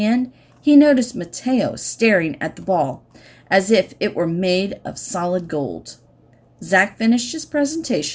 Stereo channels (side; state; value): both; identical; correlation 1.00